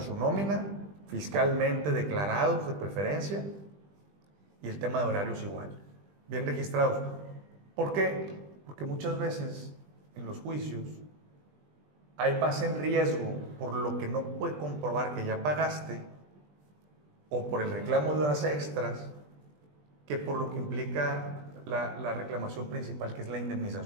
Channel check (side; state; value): left; late; 20 ms